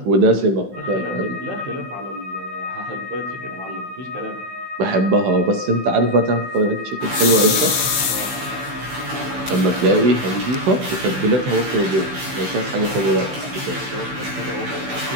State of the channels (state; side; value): late; left; 16 ms